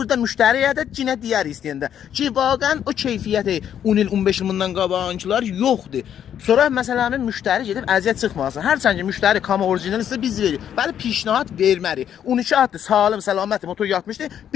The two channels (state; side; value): quieter; right; 9.6 dB